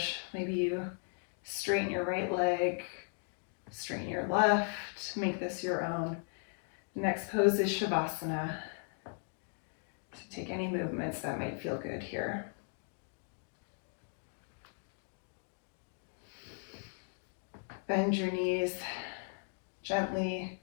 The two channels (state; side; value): silent; right; 53 dB below the other